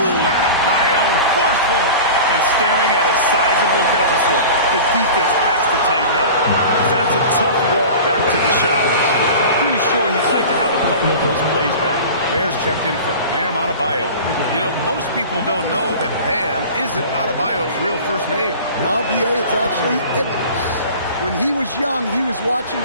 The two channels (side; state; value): both; inverted; correlation -0.37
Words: Adebayo! Forceful! And staring at a sizable deficit, the defense has to tighten up. That's a tough walk back to the showers. Pretty sure he'd like to have a couple of those plays back. Bears checked in for Bam Adebayo. You know, most people don't know that Bam isn't Adebayo's real first name. Now, B.A., it's actually Idris. When he was young, he was watching